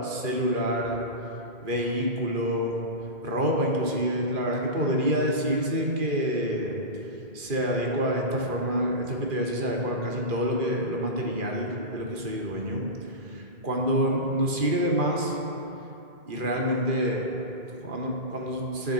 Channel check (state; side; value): late; left; 2.4 ms